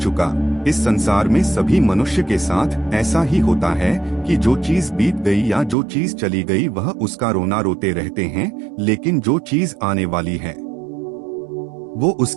इस संसार में सभी मनुष्य के साथ ऐसा ही होता है कि जो चीज बीत गई या जो चीज चली गई वह उसका रोना रोते रहते हैं, लेकिन जो चीज आने वाली है वो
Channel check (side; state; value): left; drops out; at 5.8 s